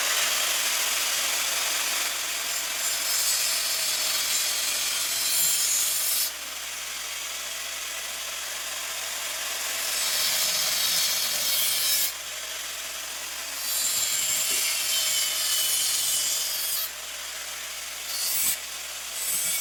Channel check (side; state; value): right; noise; hum, 28 dB below the sound